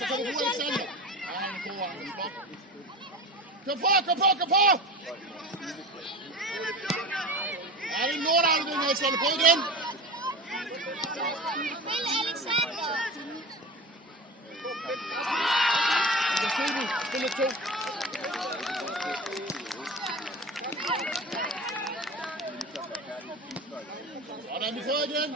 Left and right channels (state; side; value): normal; both; correlation 0.31